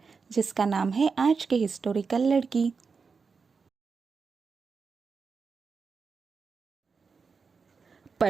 जिसका नाम है आज के हिस्टोरिकल लड़की।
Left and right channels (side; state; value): left; quieter; 5.1 dB